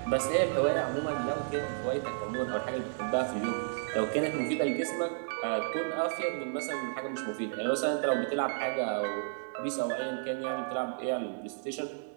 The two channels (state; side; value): silent; left; digital silence